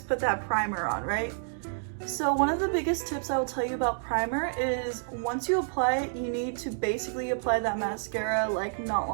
put that primer on, right? So one of the biggest tips I will tell you about primer is once you apply it, you need to basically apply that mascara like not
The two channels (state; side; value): silent; left; digital silence